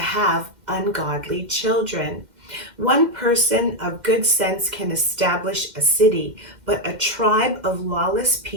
ungodly children. One person of good sense can establish a city, but a tribe of lawless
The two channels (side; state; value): left; late; 2.1 ms